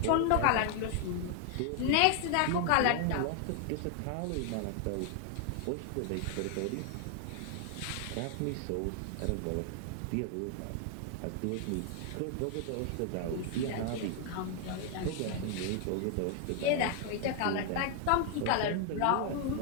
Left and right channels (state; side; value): different; both; correlation 0.00